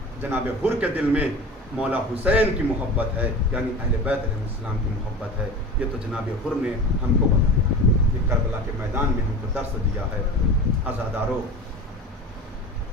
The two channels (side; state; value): both; normal; correlation 0.33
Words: جناب حر کے دل میں مولا حسین کی محبت ہے, یعنی اہل بیت علیہ السلام کی محبت ہے. یہ تو جناب حر نے ہم کو بتایا, یہ کربلا کے میدان میں ہم کو درس دیا ہے. عزادارو,